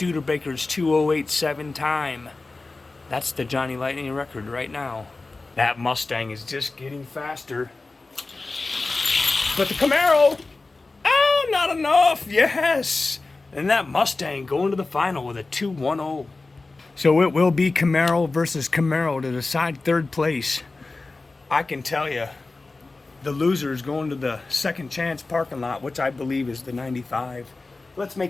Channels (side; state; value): right; quieter; 3.5 dB